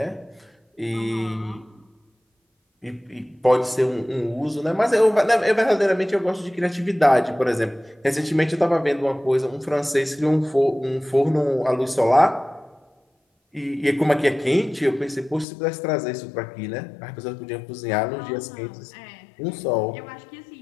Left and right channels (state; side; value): drops out; right; at 15.5 s